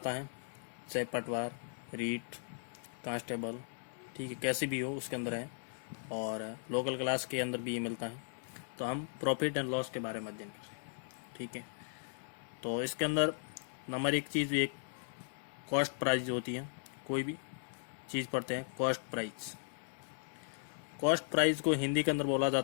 है, चाहे पटवार, रीट, कांस्टेबल, ठीक है, कैसी भी हो उसके अंदर है, और लोकल क्लास के अंदर भी ये मिलता है। तो हम प्रॉफिट एंड लॉस के बारे में अध्ययन करें, ठीक है। तो इसके अंदर नंबर एक चीज़, एक कॉस्ट प्राइस होती है। कोई भी चीज़ पढ़ते हैं, कॉस्ट प्राइस। कॉस्ट प्राइस को हिंदी के अंदर बोला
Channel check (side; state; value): right; silent; 53 dB below the other